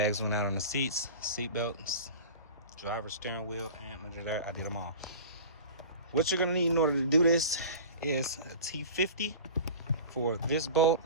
went out on the seats, seat belts, driver's steering wheel, and under there, I did them all. What you're gonna need in order to do this is a T50 for this bolt,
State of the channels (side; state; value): both; inverted; correlation -0.37